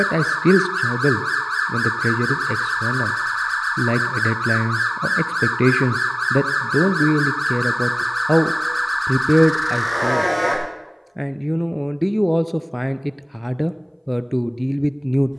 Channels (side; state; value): both; identical; correlation 1.00